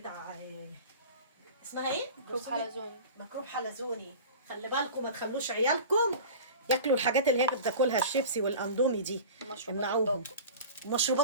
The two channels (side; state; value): both; inverted; correlation -0.36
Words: اسمها ايه؟ ميكروب حلزوني. ميكروب حلزوني. خلي بالكم ما تخلوش عيالكم ياكلوا الحاجات اللي هي بتاكلها الشيبسي والاندومي دي. مشروبات امنعوهم. الطاقة.